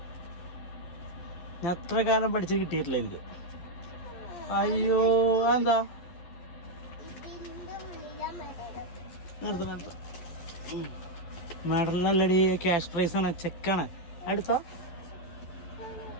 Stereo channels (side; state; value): right; late; 11 ms